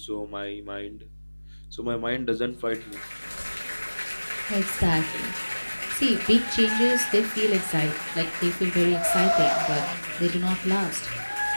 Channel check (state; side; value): inverted; both; correlation -1.00